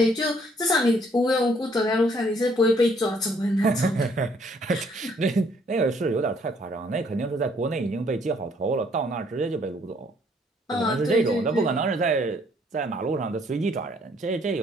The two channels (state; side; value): normal; both; correlation 0.65